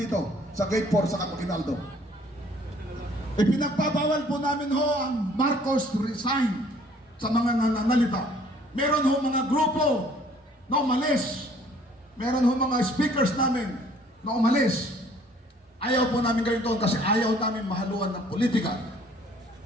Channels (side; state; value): both; normal; correlation 0.57